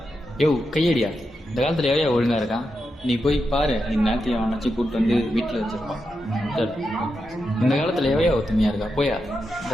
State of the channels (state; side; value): normal; both; correlation 0.87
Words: யோ கையடியா, இந்த காலத்தில் எவையா ஒழுங்கா இருக்கான்? நீ போய் பாரு, இந்த நேரத்தையும் அவனாச்சு கூப்பிட்டு வந்து வீட்டில் வச்சிருப்பான். சரி, இந்த காலத்தில் எவையா ஒத்துமையா இருக்கா? போயா